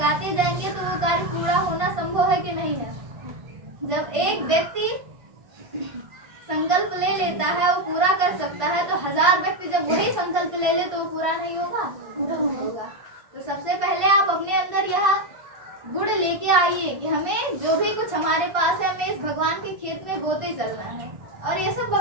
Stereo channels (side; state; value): left; late; 1.5 ms